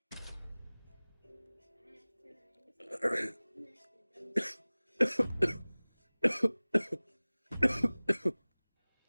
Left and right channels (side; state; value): both; inverted; correlation -1.00